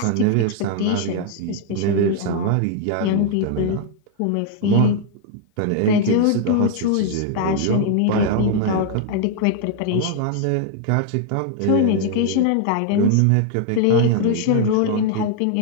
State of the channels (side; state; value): both; different; correlation 0.00